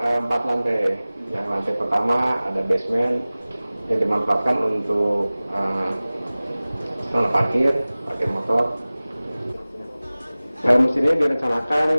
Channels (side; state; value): both; inverted; correlation -0.98